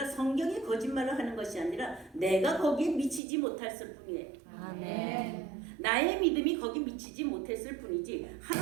성경이 거짓말을 하는 것이 아니라 내가 거기에 미치지 못했을 뿐이에요. 아멘. 나의 믿음이 거기 미치지 못했을 뿐이지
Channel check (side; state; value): left; drops out; at 3.2 s